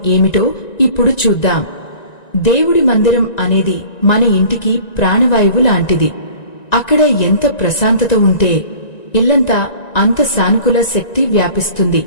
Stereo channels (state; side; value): late; right; 1.9 ms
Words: ఏమిటో ఇప్పుడు చూద్దాం. దేవుడి మందిరం అనేది మన ఇంటికి ప్రాణవాయువు లాంటిది. అక్కడ ఎంత ప్రశాంతత ఉంటే ఇల్లంతా అంత సానుకూల శక్తి వ్యాపిస్తుంది.